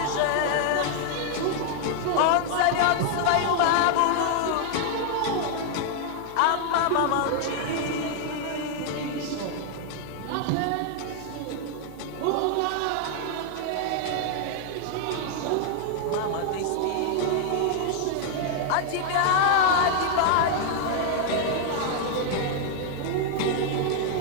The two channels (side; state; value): both; different; correlation 0.00